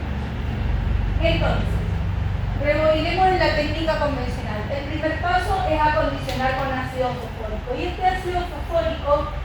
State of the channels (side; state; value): both; identical; correlation 1.00